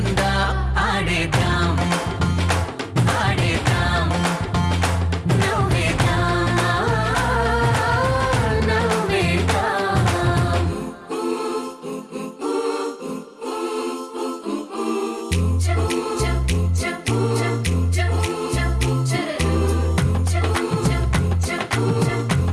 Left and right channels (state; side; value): identical; both; correlation 1.00